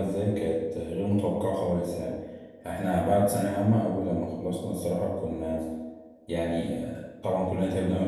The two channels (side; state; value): both; identical; correlation 1.00